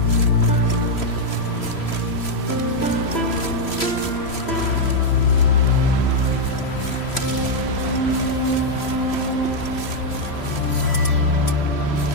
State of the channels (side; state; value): right; late; 3.1 ms